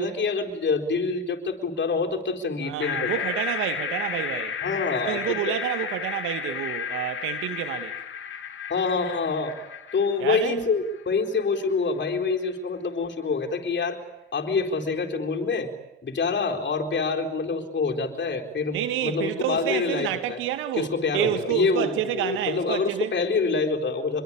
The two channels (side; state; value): both; normal; correlation 0.15